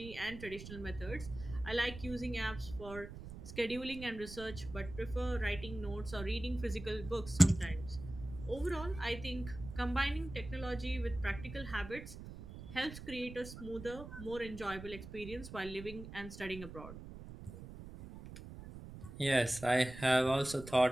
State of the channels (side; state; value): right; noise; rumble, 12 dB below the sound